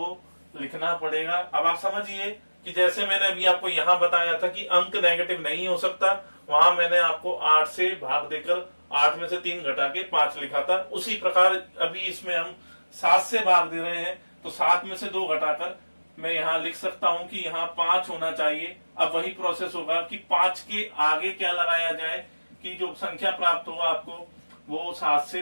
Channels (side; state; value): both; inverted; correlation -1.00